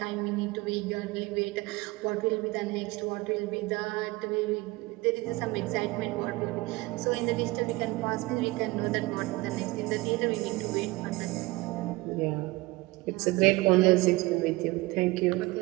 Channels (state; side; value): quieter; left; 21.5 dB